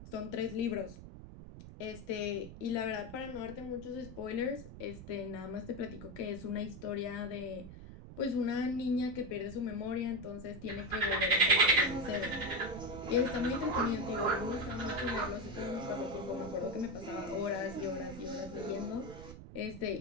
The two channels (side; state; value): right; noise; rumble, 13 dB below the sound